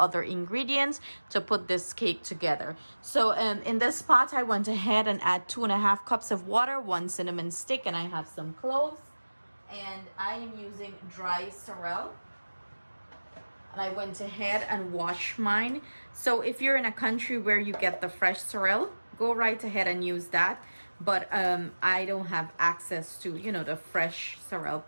ingredients to put this cake together. So in this pot I went ahead and add 2.5 cups of water, 1 cinnamon stick, and I have some cloves, and I am using dry sorrel. And I went ahead and washed mine. So if you're in a country where you get the fresh sorrel, go right ahead and use that. But I don't have access to, the fresh sorrel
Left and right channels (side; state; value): both; inverted; correlation -1.00